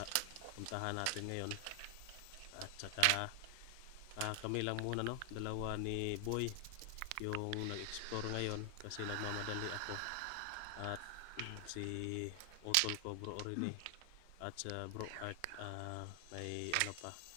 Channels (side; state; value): both; different; correlation 0.00